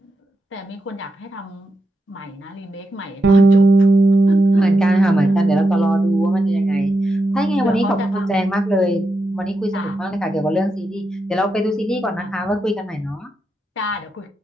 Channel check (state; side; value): normal; both; correlation 0.86